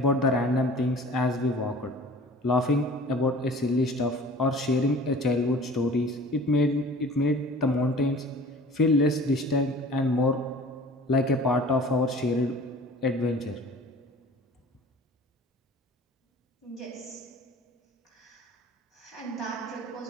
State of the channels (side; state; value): both; normal; correlation 0.44